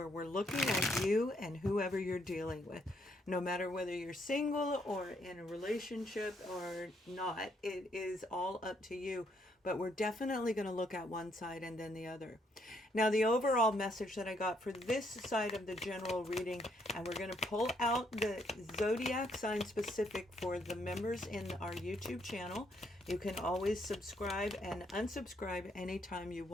we're looking at you and whoever you're dealing with. No matter whether you're single or in a relationship or not, it is all up to you. But we're definitely going to look at one side and then the other. Now, the overall message that I got for this side of the general reading, and we're going to pull out the Zodiac sign specific for the members in our YouTube channel. You can always subscribe and unsubscribe anytime you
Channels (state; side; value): normal; both; correlation 0.72